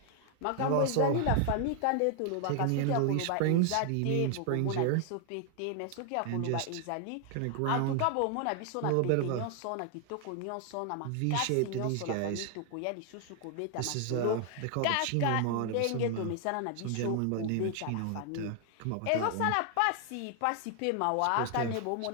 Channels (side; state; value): both; different; correlation 0.00